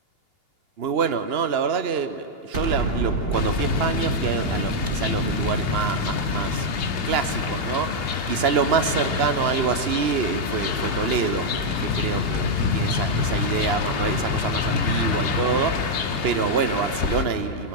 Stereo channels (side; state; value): left; late; 2.8 ms